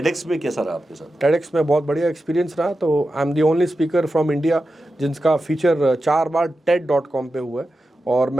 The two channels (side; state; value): both; normal; correlation 0.91